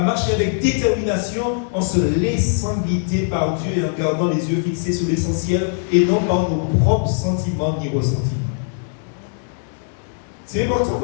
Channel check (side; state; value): right; silent; digital silence